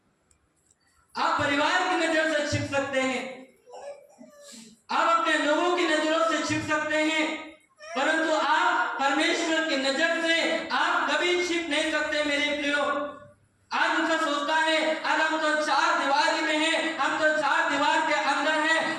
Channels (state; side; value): identical; both; correlation 1.00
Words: आप परिवार की नजर से छिप सकते हैं, आप अपने लोगों की नजरों से छिप सकते हैं, परंतु आप परमेश्वर की नजर से आप कभी छिप नहीं सकते मेरे प्रियो। आज उनका सोचता है अरे हम तो 4 दीवारी में हैं, हम तो 4 दीवार के अंदर